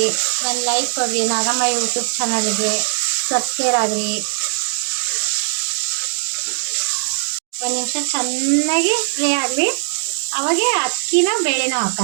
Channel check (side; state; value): left; silent; digital silence